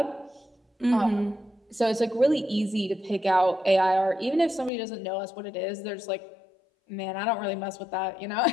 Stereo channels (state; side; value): drops out; right; at 4.7 s